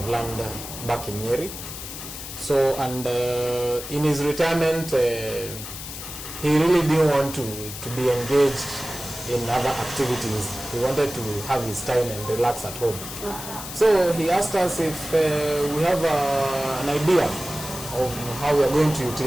land back in Nyeri. So, and in his retirement, he really didn't want to be engaged in other activities. He wanted to have his time and relax at home. So he asked us if we have an idea of how we are going to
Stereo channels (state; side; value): noise; left; hiss, 10 dB below the sound